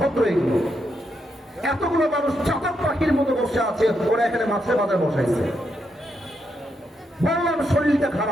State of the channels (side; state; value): both; normal; correlation 0.81